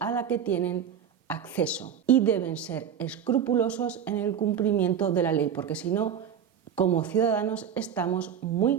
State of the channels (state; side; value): quieter; left; 8.4 dB